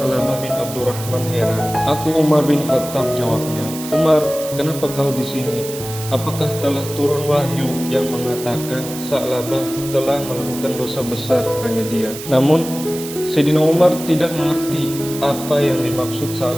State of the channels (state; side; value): noise; right; hiss, 11 dB below the sound